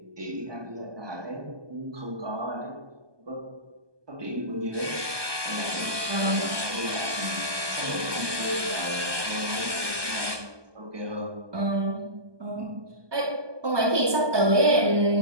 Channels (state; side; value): late; left; 1.2 ms